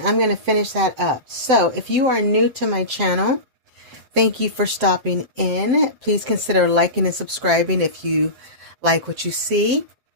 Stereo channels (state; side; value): late; left; 7.7 ms